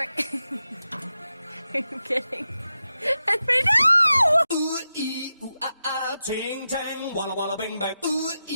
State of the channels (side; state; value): both; inverted; correlation -0.90